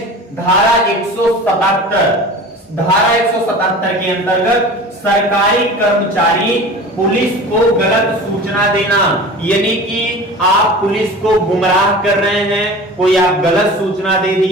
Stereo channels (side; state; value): both; normal; correlation 0.37